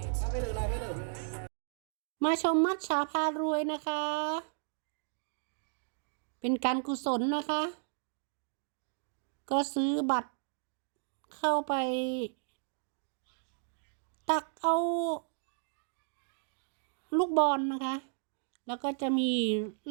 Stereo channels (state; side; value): silent; left; digital silence